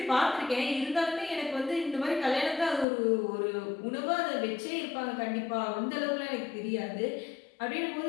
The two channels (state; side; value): drops out; right; at 2.9 s